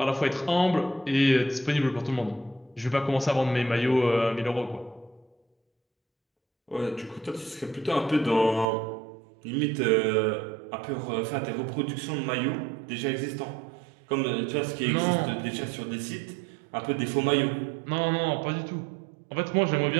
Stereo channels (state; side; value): drops out; left; at 8.7 s